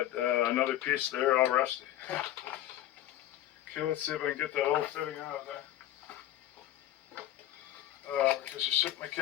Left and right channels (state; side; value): quieter; right; 13.3 dB